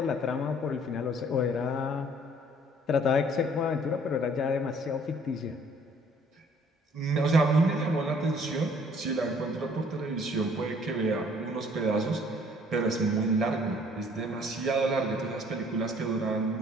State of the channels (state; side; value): normal; both; correlation 0.58